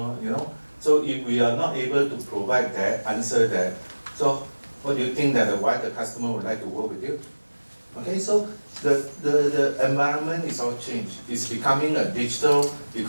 you know. So if we are not able to provide that, answer that, so what do you think that why the customer would like to work with you? Okay, so the environment is all changed. It's becoming a digital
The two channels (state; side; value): inverted; both; correlation -1.00